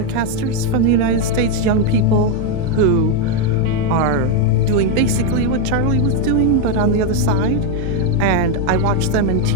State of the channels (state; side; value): different; both; correlation 0.02